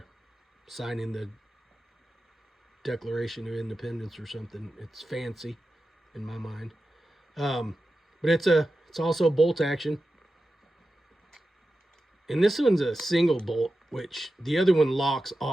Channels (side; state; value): both; normal; correlation 0.92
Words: signing the Declaration of Independence or something. It's fancy in my mind. But it's also bolt action. And this one's a single bolt, which the other one locks